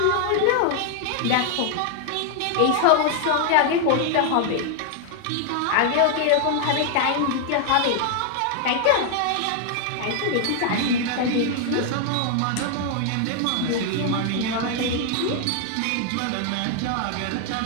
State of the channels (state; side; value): different; both; correlation 0.00